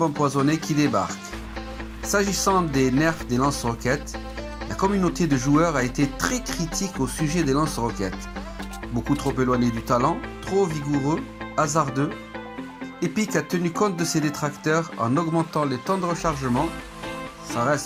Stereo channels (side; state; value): both; identical; correlation 1.00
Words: empoisonnées qui débarquent. S'agissant des nerfs des lance-roquettes, la communauté de joueurs a été très critique au sujet des lance-roquettes. Beaucoup trop éloignés du talent, trop vigoureux, hasardeux. Epic a tenu compte de ses détracteurs en augmentant les temps de rechargement. Ça